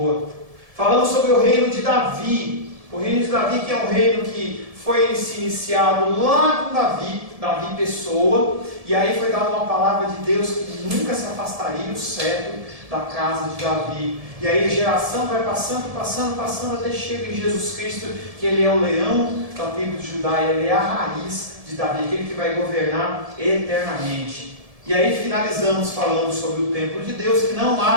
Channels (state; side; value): late; left; 1.7 ms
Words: Falamos sobre o reino de Davi, o reino de Davi, que é um reino que foi iniciado lá com Davi pessoa, e aí foi dada uma palavra de Deus que nunca se afastaria o cetro da casa de Davi. E aí a geração vai passando, até chega em Jesus Cristo, que ele é o leão da tribo de Judá, ele é a raiz de Davi, aquele que vai governar eternamente. E aí finalizamos falando sobre o templo de Deus, que não